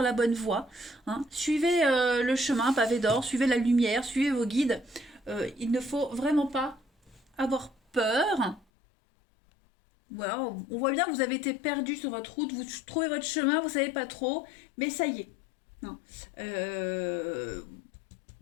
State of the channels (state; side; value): drops out; right; at 8.7 s